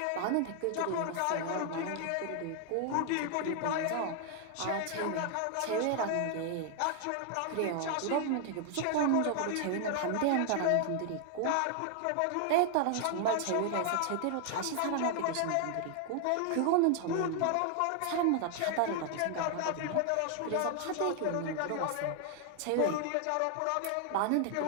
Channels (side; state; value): both; different; correlation 0.00